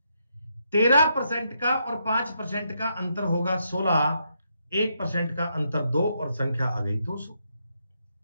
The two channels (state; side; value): inverted; both; correlation -0.79